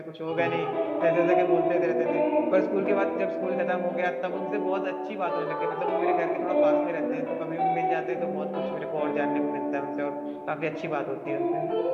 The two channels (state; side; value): identical; both; correlation 1.00